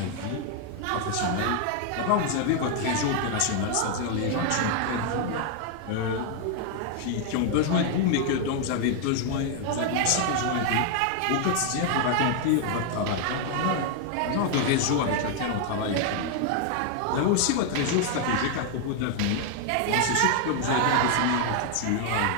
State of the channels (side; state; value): both; different; correlation 0.00